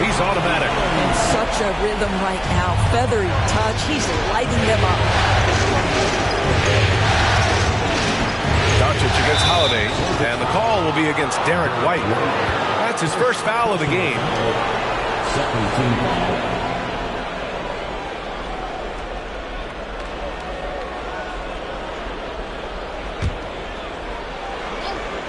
He's automatic. In such a rhythm right now. Feathery touch. He's lighting them up. Doncic against Holiday. And the call will be against Derek White. That's his first foul of the game. 17 foul.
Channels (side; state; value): both; identical; correlation 1.00